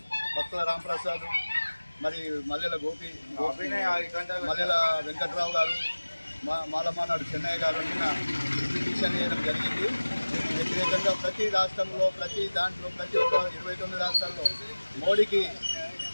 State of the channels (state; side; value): inverted; both; correlation -1.00